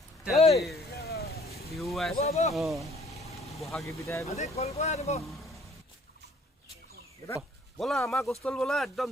বিহু বহাগী বিদায় ব'লা আমাৰ গছতল ব'লা একদম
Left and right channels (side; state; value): both; normal; correlation 0.58